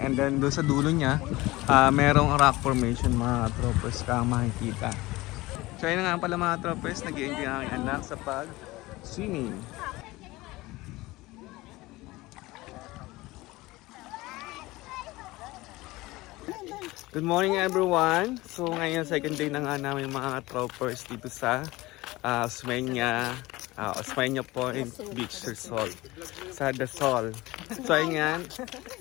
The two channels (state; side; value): quieter; right; 20.0 dB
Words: And then doon sa dulo niya, merong rock formation mga troppers kang makikita. So ayun nga pala mga troppers, nag-i-enjoy ang aking anak sa pag-swimming. Good morning everyone! So ngayon second day na nga namin mga troppers dito sa Osmeña Point Beach Resort sa Dazul. So ayan.